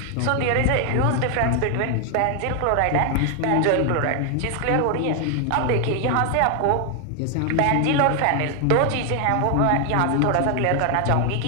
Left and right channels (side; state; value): both; different; correlation 0.00